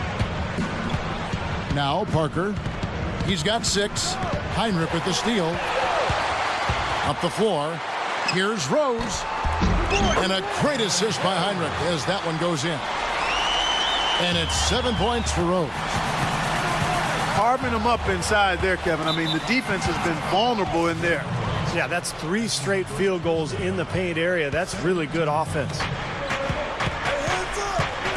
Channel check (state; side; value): identical; both; correlation 1.00